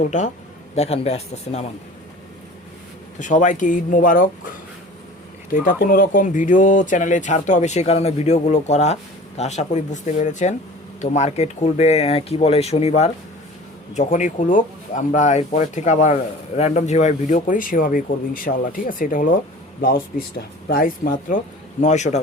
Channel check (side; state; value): both; normal; correlation 0.42